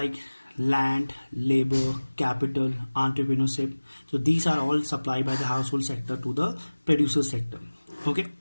land, labor, capital, entrepreneurship, so these are all supplied by the household sector to the producer sector. Okay,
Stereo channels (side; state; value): both; inverted; correlation -1.00